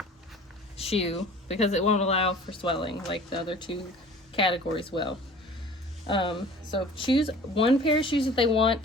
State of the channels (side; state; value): both; normal; correlation 0.45